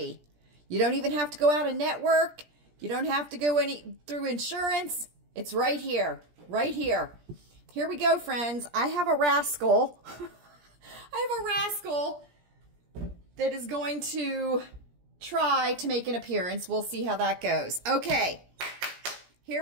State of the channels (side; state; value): left; late; 17 ms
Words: You don't even have to go out and network. You don't have to go through insurance. It's right here. Right here. Here we go, friends. I have a rascal. I have a rascal that is going to try to make an appearance. We'll see how that goes. Okay.